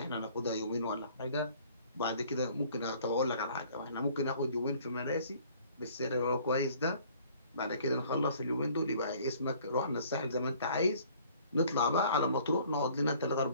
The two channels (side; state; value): both; inverted; correlation -0.56